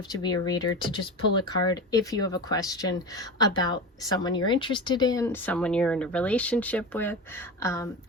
to be a reader to just pull a card if you have a question about someone you're interested in, someone you're in a relationship with.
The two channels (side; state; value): both; normal; correlation 0.27